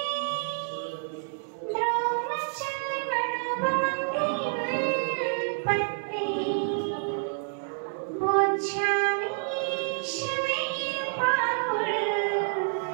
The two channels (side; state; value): left; silent; 58 dB below the other